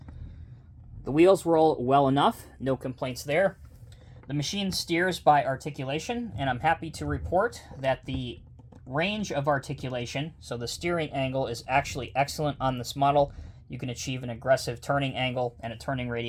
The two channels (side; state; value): both; identical; correlation 1.00